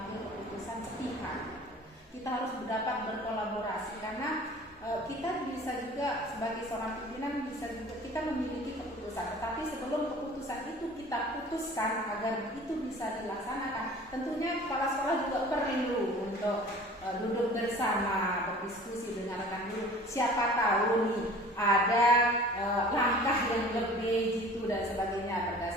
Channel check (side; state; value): both; normal; correlation 0.45